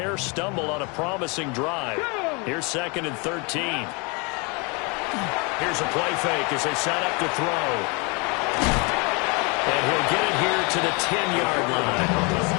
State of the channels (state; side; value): quieter; right; 30.5 dB